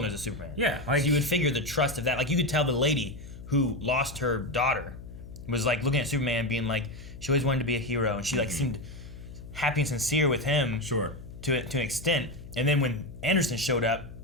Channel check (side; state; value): left; noise; hum, 14 dB below the sound